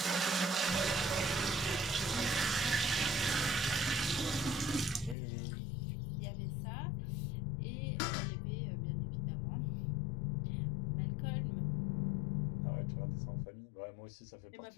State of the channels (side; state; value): right; drops out; at 5.2 s